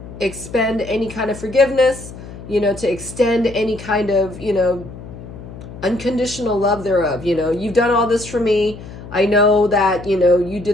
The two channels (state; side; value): noise; left; hum, 14 dB below the sound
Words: expend any kind of forgiveness, you know, to extend any kind of, you know, unconditional love thereof. You know, you've done all this for me. I know that, you know, you